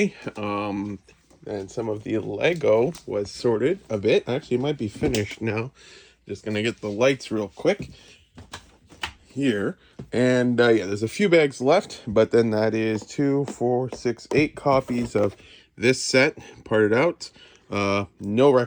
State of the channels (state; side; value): identical; both; correlation 1.00